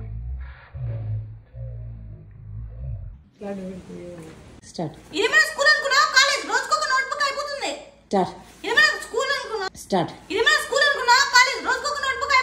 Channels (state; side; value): identical; both; correlation 1.00